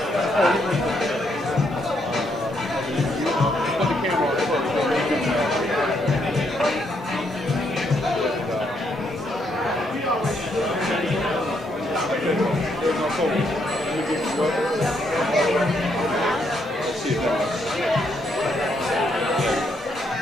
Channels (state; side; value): normal; both; correlation 0.75